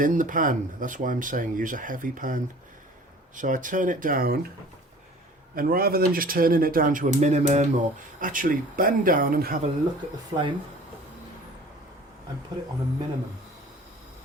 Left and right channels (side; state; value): both; normal; correlation 0.47